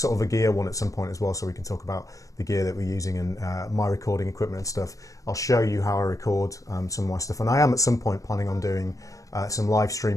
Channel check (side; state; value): right; late; 0.16 ms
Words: of a gear one at some point as well, so we can talk about the gear that we're using and my recording equipment and stuff. I'll show you how I record some of my stuff, and I am at some point planning on doing some live